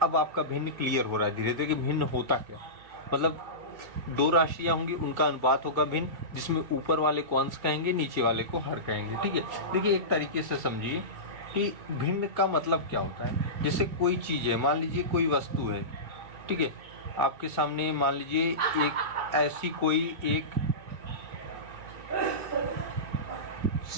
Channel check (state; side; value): late; left; 2.1 ms